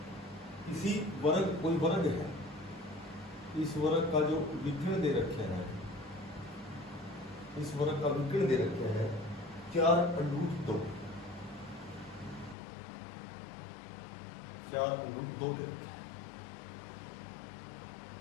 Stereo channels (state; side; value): drops out; right; at 12.6 s